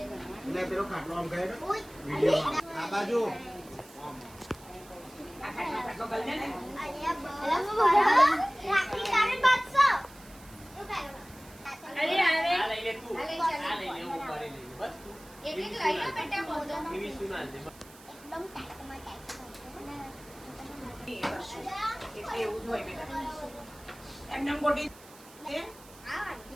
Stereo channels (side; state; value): right; noise; hiss, 22 dB below the sound